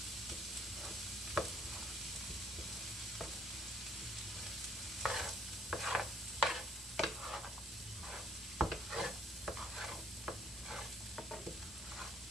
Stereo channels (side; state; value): both; normal; correlation 0.66